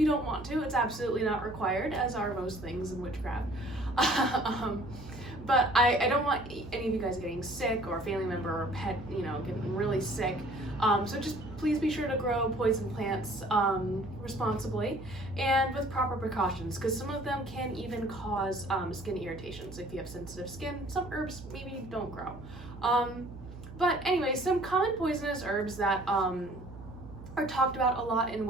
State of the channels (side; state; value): right; noise; hum, 14 dB below the sound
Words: don't want to. It's absolutely not required, as are most things in witchcraft. But I don't want any of you guys getting sick or a family member or pet, getting really sick. So just please be sure to grow poison plants responsibly and with proper precautions, because some of them can even cause skin irritations. If you have sensitive skin, some herbs maybe don't grow. But anyway, some common poisonous herbs that are talked about a lot in